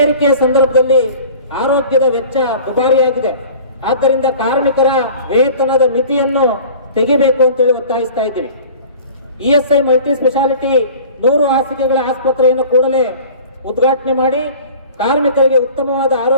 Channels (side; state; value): both; inverted; correlation -0.43